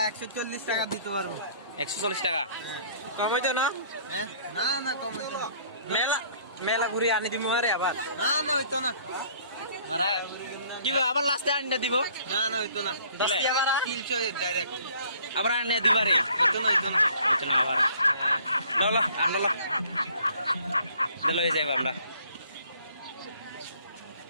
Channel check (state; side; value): inverted; both; correlation -0.57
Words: 140 টাকা দিতে পারবো। 140 টাকা। কমাইতো না? হ্যাঁ, না না কমাইতো না। মেলা ঘুরি আনি দিমু আরে আবার। না না হইতো না। মারাই কি আবার লাস্টে আনিয়ে দিব? না না হইতো না। 10 টাকা 300 ডাইরেক্ট। আবার আনিয়ে দিবারে। হইতো না হইতো না। চলো আবার আনলো লই যাইব আমরা।